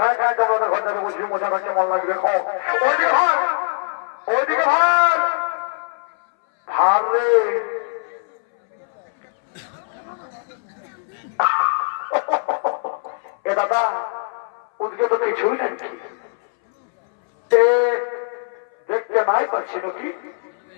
খায় তোমাদের ঘর যাবে, বুঝবি মশাটা কেমন লাগবে। খাও ওইদিকে ভাই, ওইদিকে ভাই ভার রে। এ দাদা ওদিকে তো কিছুই নাকি, দেখতে নাই পাচ্ছি নাকি?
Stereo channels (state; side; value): silent; right; 63 dB below the other